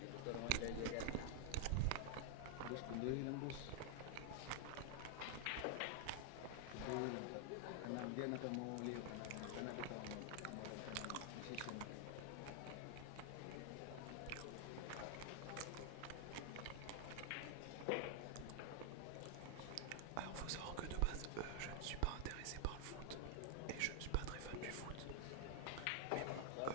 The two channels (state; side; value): different; both; correlation 0.00